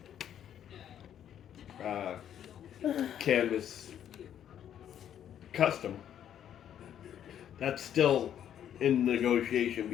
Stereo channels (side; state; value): right; quieter; 9.9 dB